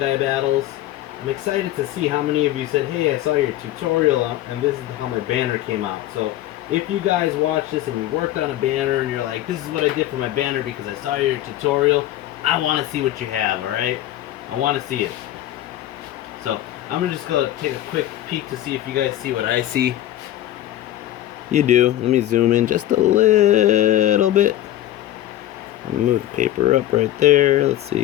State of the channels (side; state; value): right; quieter; 13.6 dB